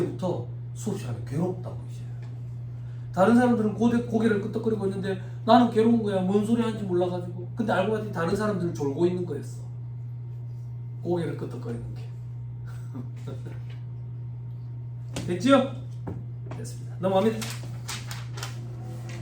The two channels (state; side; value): identical; both; correlation 1.00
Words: 수업 시간에 괴롭다고 이제. 다른 사람들은 고개를 끄덕거리고 있는데 나는 괴로운 거야. 뭔 소리 하는지 몰라가지고. 근데 알고 봤더니 다른 사람들은 졸고 있는 거였어. 고개를 끄덕거리는 게. 됐죠? 됐습니다. 넘어갑니다.